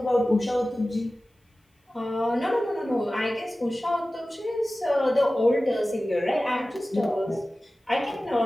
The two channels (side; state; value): both; normal; correlation 0.96